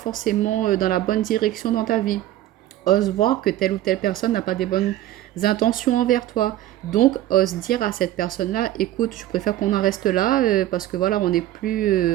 dans la bonne direction dans ta vie. Ose voir que telle ou telle personne n'a pas des bonnes intentions envers toi. Donc, ose dire à cette personne-là, écoute, je préfère qu'on en reste là parce que voilà, on n'est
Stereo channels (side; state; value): left; quieter; 13.8 dB